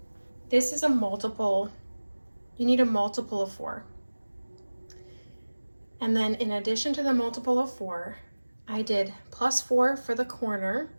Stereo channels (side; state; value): both; inverted; correlation -1.00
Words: this is a multiple. You need a multiple of 4. And then in addition to the multiple of 4, I did +4 for the corner.